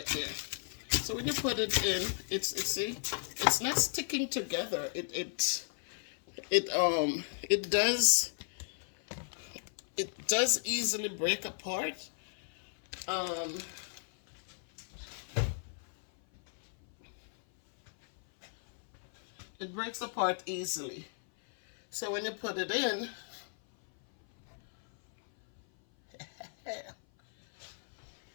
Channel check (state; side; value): silent; right; 55 dB below the other